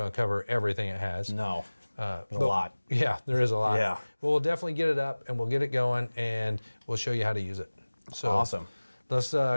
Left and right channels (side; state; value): both; inverted; correlation -1.00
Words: to cover everything it has. No. There's a lot. Yeah, there is a lot. Yeah. But we'll definitely get it up and we'll get it going and we'll show you how to use it. So awesome. Let's